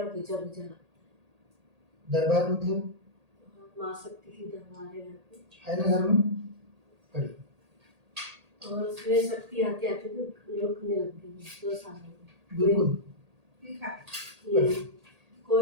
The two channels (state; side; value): late; left; 1.8 ms